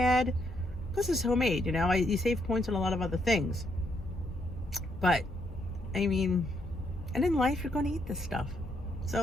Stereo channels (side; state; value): both; normal; correlation 0.75